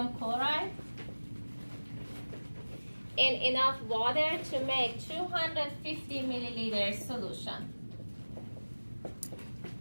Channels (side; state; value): both; inverted; correlation -1.00